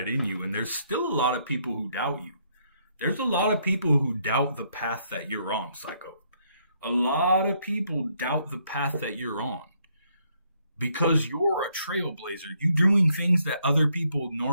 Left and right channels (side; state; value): both; inverted; correlation -0.72